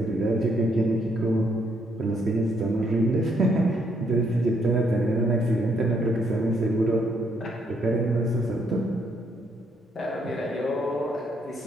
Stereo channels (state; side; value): normal; both; correlation 0.72